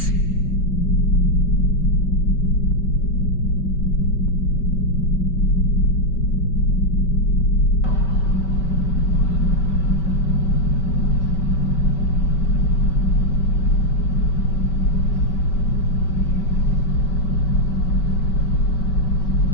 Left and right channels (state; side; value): late; right; 5.2 ms